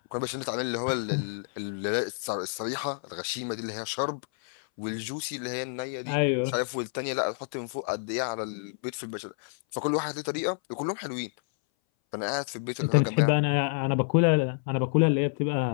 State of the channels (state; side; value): silent; right; 59 dB below the other